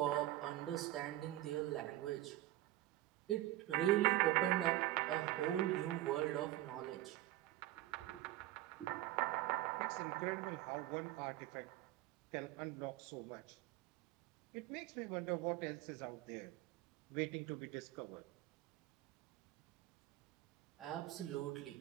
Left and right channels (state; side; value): quieter; left; 15.5 dB